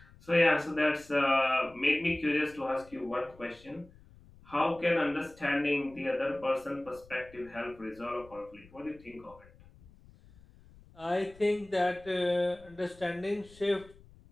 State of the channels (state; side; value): noise; left; rumble, 24 dB below the sound